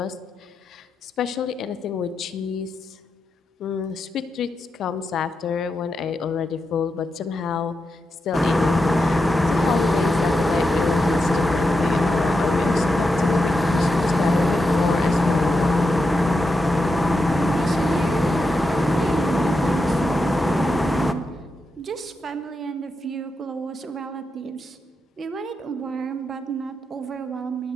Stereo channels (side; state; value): both; normal; correlation 0.87